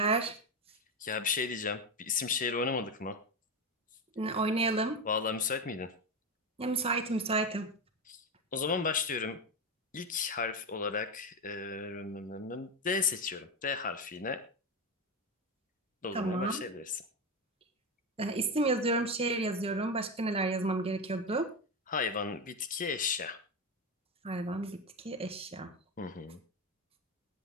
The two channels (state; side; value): normal; both; correlation 0.14